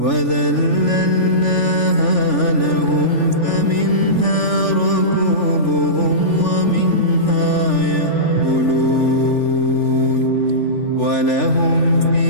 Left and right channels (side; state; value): right; late; 3.4 ms